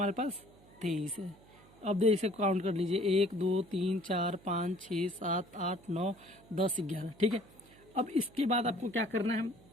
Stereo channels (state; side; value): noise; right; hum, 25 dB below the sound